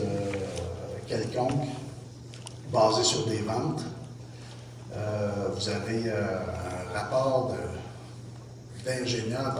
quelconque basée sur des ventes. Vous avez un rapport d'ingénieur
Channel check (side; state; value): both; identical; correlation 1.00